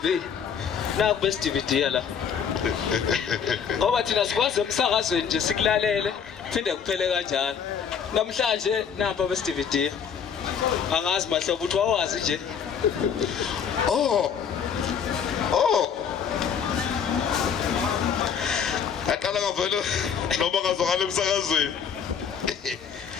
naku best DVD la ngoba thina sikwazi emsakazweni nje sikulalele phinde kuphele kanjalo namhlanje napa best DVD angazi mahlobo uthi wawazi nje aqala ngavela noma ngazwakala emsakazweni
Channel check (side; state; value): right; quieter; 7.3 dB